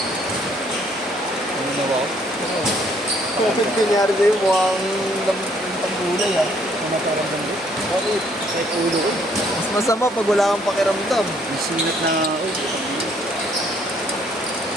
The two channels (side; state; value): both; normal; correlation 0.65